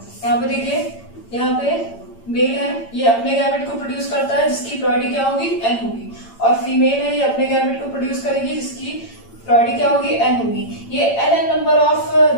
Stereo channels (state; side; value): late; right; 8.8 ms